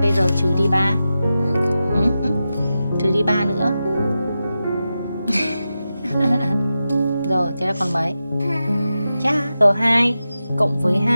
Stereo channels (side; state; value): both; inverted; correlation -0.91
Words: bây giờ trừ đi 3. Trừ đi 3 nữa. Rồi, thế là còn mấy? Chà, rồi 2 cộng với